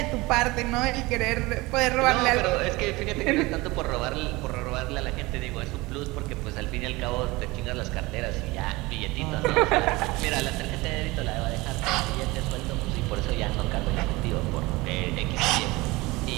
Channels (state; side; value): quieter; left; 22.0 dB